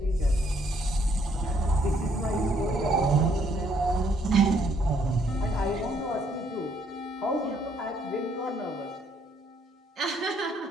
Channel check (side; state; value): both; normal; correlation 0.68